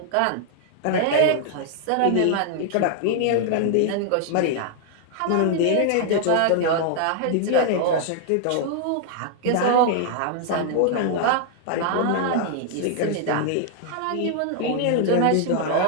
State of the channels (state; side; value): different; both; correlation 0.00